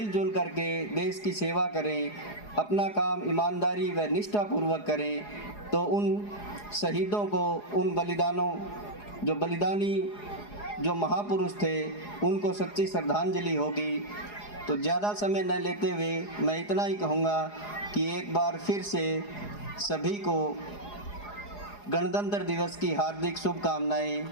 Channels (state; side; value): late; right; 4.8 ms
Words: करके देश की सेवा करें, अपना काम ईमानदारी व निष्ठापूर्वक करें, तो उन शहीदों को, उन बलिदानों, जो बलिदानी जो महापुरुष थे, उनको सच्ची श्रद्धांजलि होगी। तो ज़्यादा समय न लेते हुए मैं इतना ही कहूँगा कि एक बार फिर से सभी को गणतंत्र दिवस की हार्दिक शुभकामनाएं।